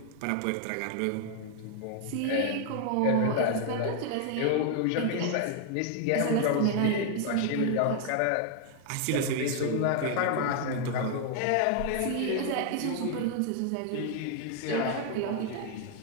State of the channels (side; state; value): both; different; correlation 0.00